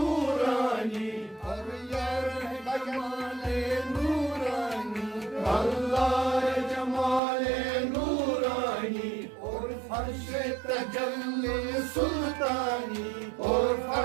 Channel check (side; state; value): left; drops out; at 7.2 s